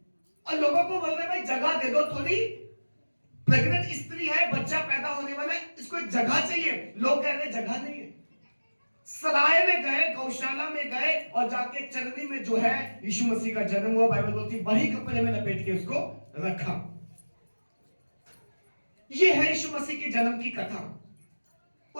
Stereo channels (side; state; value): both; inverted; correlation -1.00